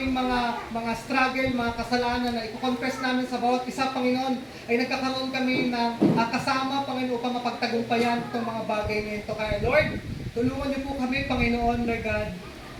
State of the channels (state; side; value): identical; both; correlation 1.00